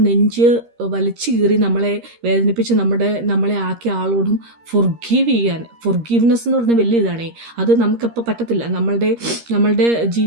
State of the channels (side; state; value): left; late; 13 ms